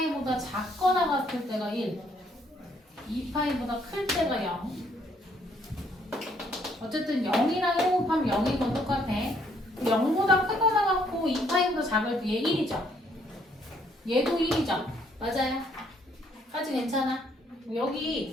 작거나 같을 때가 1, 2파이보다 클 때가 0. 어쨌든 0이랑 1 곱하면 0인 건 똑같아. 0보다 크거나 같고 2파이보다 작을 때 얘 1이죠. 얘도 1이죠. 맞아요. 까지 괜찮아.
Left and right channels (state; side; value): normal; both; correlation 0.68